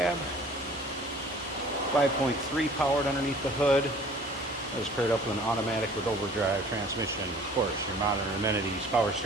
5.3 powered underneath the hood. That is paired up with an automatic with overdrive transmission. Of course, your modern amenities, power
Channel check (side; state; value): both; normal; correlation 0.50